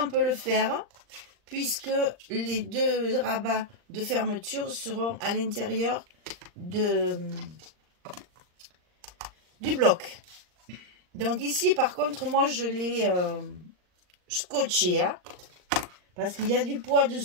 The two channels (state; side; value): late; left; 39 ms